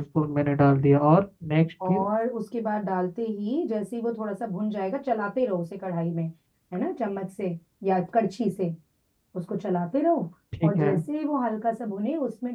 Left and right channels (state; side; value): identical; both; correlation 1.00